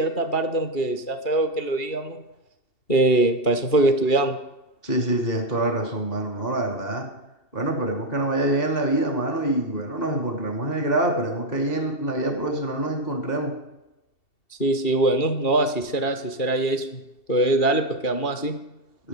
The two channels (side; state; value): right; late; 2.7 ms